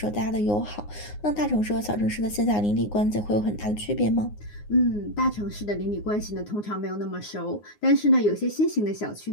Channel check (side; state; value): right; late; 9.6 ms